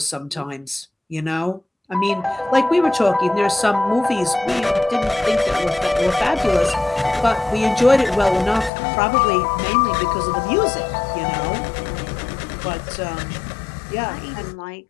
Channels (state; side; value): drops out; right; at 8.7 s